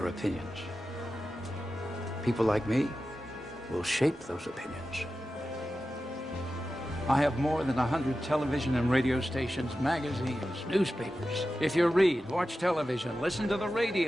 opinions. People like me will shape those opinions. I have more than 100 television and radio stations, magazines, newspapers. If you read, watch television, listen to the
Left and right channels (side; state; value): both; normal; correlation 0.93